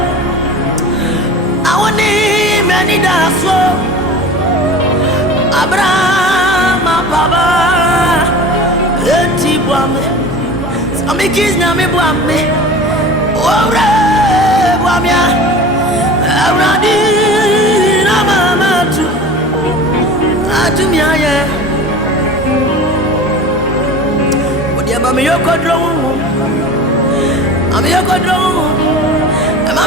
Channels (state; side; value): normal; both; correlation 0.37